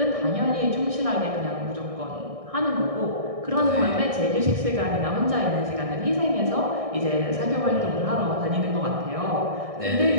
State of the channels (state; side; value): late; left; 1.6 ms